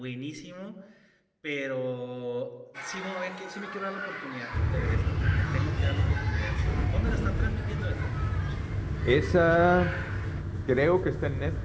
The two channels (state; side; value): identical; both; correlation 1.00